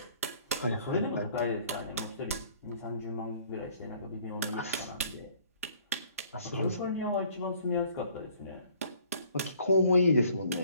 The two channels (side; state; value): both; inverted; correlation -0.58